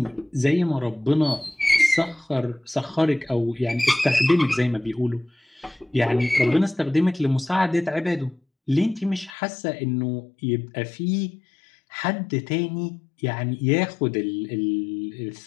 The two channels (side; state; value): right; drops out; at 9.3 s